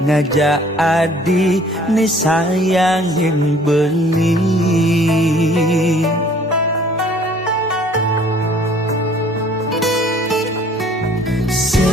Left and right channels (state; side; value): normal; both; correlation 0.55